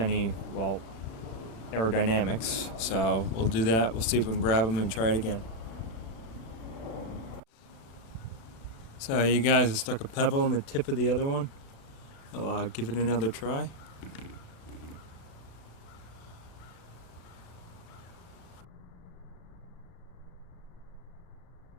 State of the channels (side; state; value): right; late; 36 ms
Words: well, aerodynamics. So we'll do that. We'll see if we can grab them and try it again. So you guys have stuck a pebble in the tip of the other one. I'll give it another try.